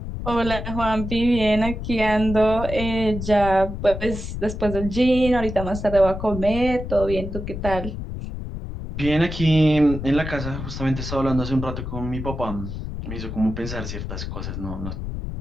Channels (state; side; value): noise; left; rumble, 7 dB below the sound